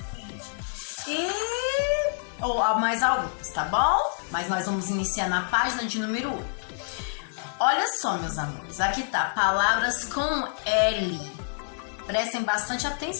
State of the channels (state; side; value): silent; right; 55 dB below the other